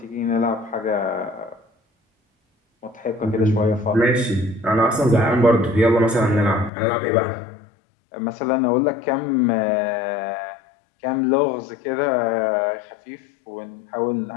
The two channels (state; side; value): drops out; right; at 6.7 s